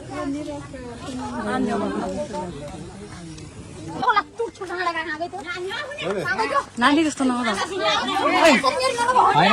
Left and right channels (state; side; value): identical; both; correlation 1.00